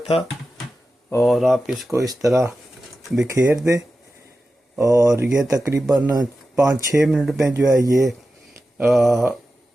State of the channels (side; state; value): both; normal; correlation 0.93